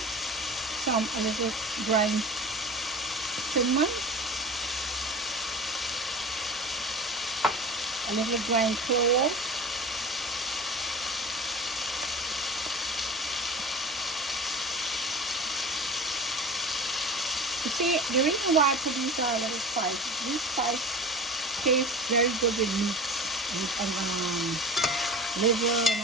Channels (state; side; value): normal; both; correlation 0.34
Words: Some a little ground cinnamon. A little ground clove. You see, the reason why I put these little spices, these spices taste very good with meat and liver and